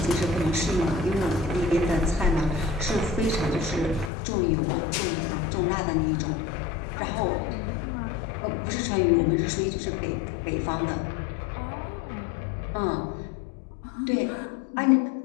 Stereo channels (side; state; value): right; drops out; at 4.1 s